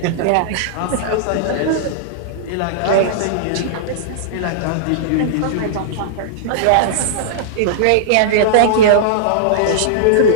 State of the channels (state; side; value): different; both; correlation -0.02